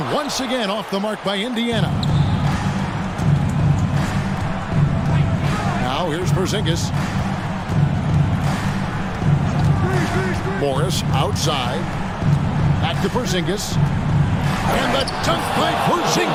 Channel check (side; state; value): both; identical; correlation 1.00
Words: once again off the mark by Indiana. Now here's Porzingis. Morris outside. Back to Porzingis. And the dunk by